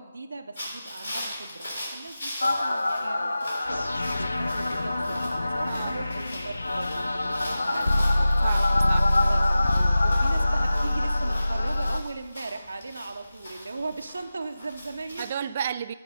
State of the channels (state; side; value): inverted; both; correlation -0.94